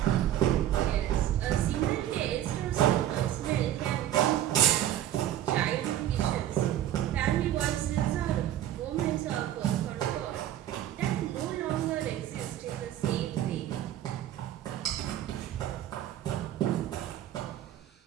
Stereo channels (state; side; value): quieter; left; 12.1 dB